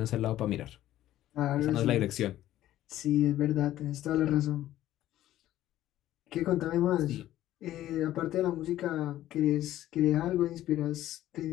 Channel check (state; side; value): quieter; right; 13.6 dB